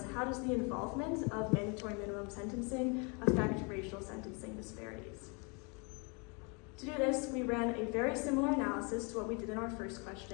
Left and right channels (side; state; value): right; quieter; 32.9 dB